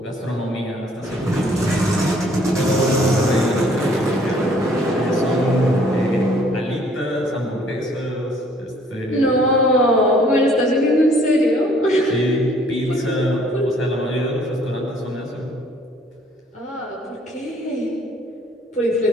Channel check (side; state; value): both; normal; correlation 0.60